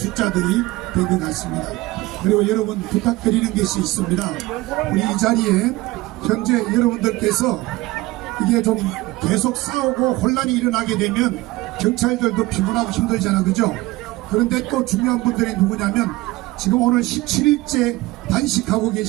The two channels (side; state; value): left; quieter; 19.6 dB